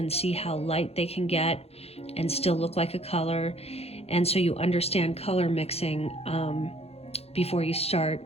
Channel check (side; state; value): right; late; 0.29 ms